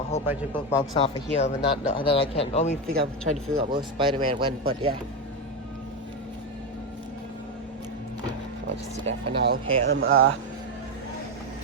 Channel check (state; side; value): normal; both; correlation 0.11